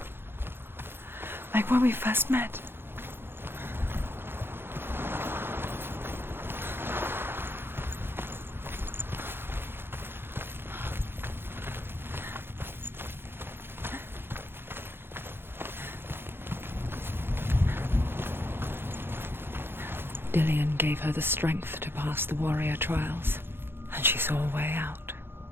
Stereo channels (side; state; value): left; late; 0.11 ms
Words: Like when we first met. Dillion gave her the strength to pass the warrior trials, and she saw a way out.